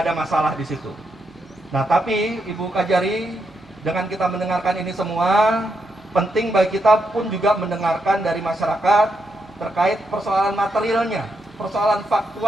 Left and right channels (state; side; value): normal; both; correlation 0.81